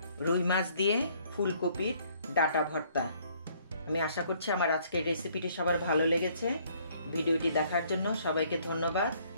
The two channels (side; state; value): both; inverted; correlation -0.63